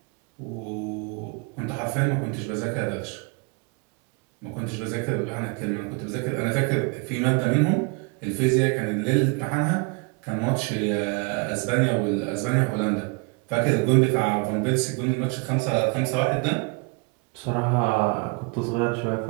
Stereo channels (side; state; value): left; quieter; 31.3 dB